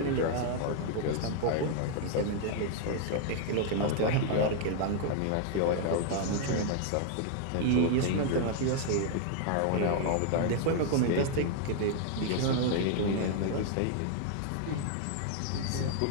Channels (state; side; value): different; both; correlation 0.00